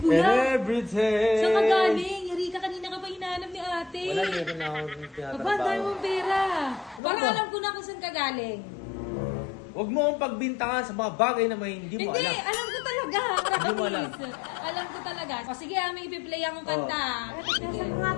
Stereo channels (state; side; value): drops out; right; at 7.0 s